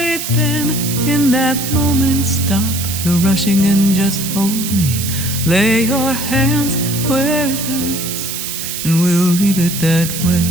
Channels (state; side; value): noise; right; hiss, 5 dB below the sound